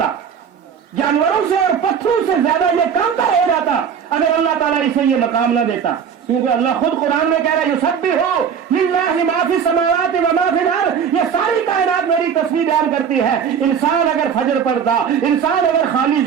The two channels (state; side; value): quieter; left; 7.4 dB